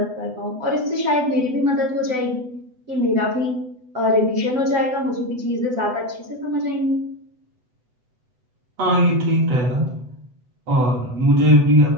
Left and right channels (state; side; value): late; left; 8.0 ms